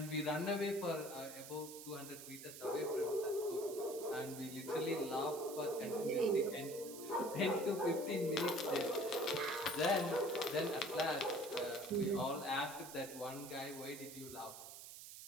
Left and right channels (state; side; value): noise; right; hiss, 12 dB below the sound